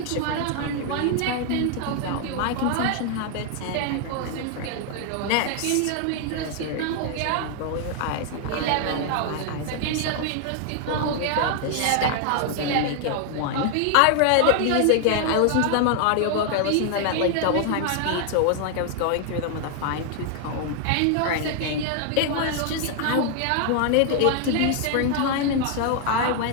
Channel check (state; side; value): different; both; correlation 0.00